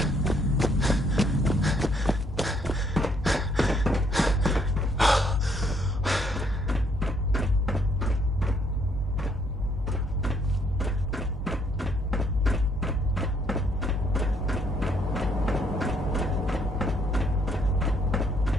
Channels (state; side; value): normal; both; correlation 0.68